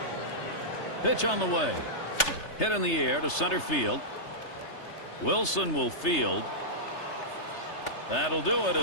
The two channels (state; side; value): late; right; 3.3 ms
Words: Pitch on the way. Hit in the air to center field. Wilson will field. That'll do it